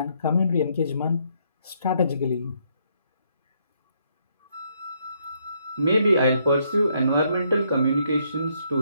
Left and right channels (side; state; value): both; inverted; correlation -0.73